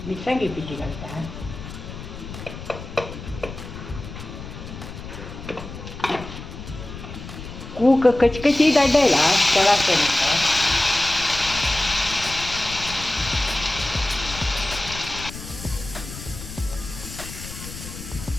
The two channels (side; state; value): left; noise; rumble, 11 dB below the sound